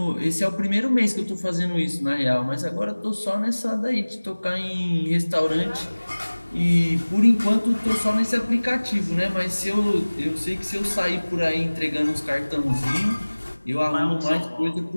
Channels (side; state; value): both; inverted; correlation -1.00